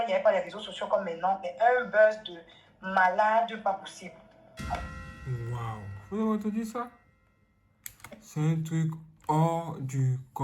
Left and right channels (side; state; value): both; identical; correlation 1.00